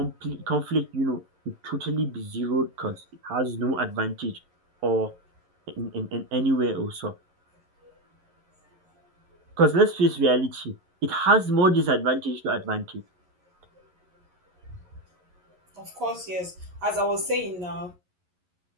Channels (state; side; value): late; left; 11 ms